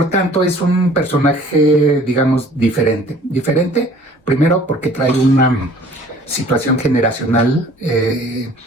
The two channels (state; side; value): normal; both; correlation 0.52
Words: tanto es un personaje, digamos, diferente. Diferente, primero porque trae una situación generacional